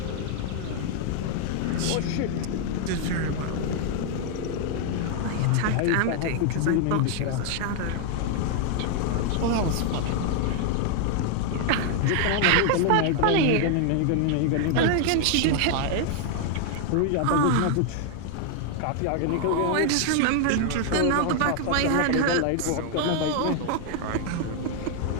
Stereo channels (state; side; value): different; both; correlation 0.00